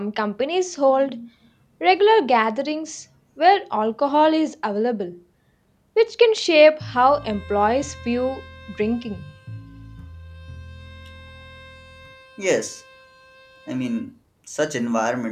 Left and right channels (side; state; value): both; identical; correlation 1.00